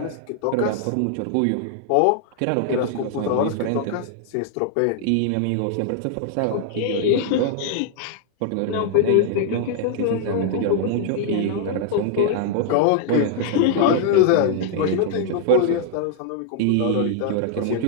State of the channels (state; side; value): different; both; correlation -0.01